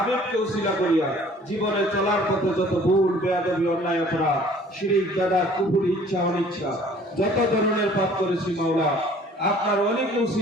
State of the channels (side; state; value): both; normal; correlation 0.53